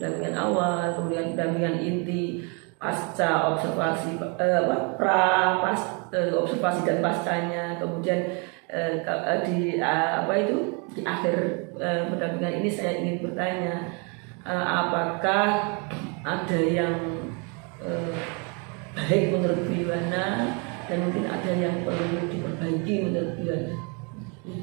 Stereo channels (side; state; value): left; quieter; 34.1 dB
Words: awal, kemudian pendampingan inti, pasca observasi, observasi dan pascanya, kemudian di akhir pendampingan ini saya ingin bertanya, apakah ada yang baik menurut Bu Yana dan mungkin ada yang perlu diperbaiki menurut Bu Yana?